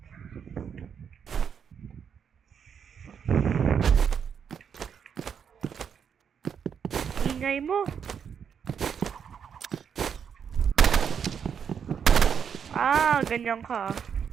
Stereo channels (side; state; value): left; quieter; 7.4 dB